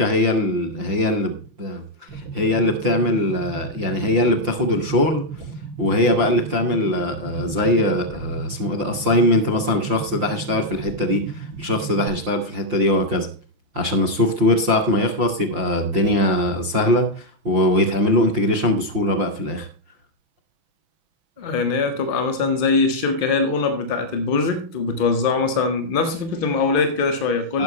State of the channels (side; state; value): left; late; 5.7 ms